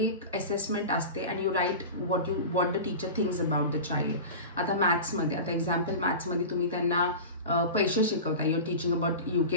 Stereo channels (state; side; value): inverted; both; correlation -0.30